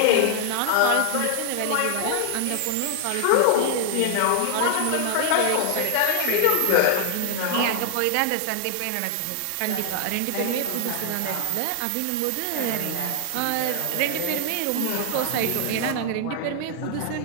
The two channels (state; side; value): different; both; correlation 0.00